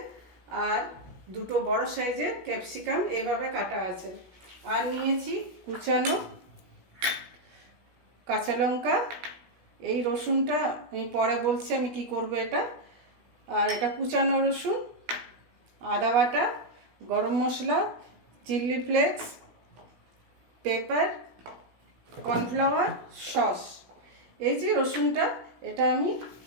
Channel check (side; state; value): left; late; 17 ms